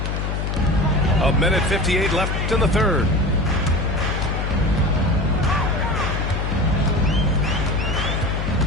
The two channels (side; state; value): left; noise; hum, 1 dB below the sound